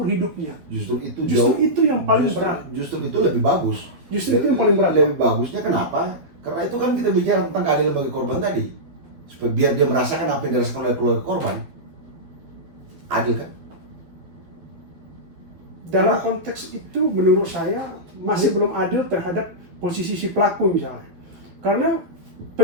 hidupnya. Justru itu yang paling berat. Justru itu lebih bagus. Justru itu yang paling berat. Lebih bagusnya kenapa? Karena itu kan kita bicara tentang keadilan bagi korban tadi. Supaya biar dia merasakan apa yang dirasakan oleh keluarga korban. Adil kan? Dalam konteks itu menurut saya masih belum adil terhadap posisi si pelaku misalnya. Karena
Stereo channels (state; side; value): late; left; 12 ms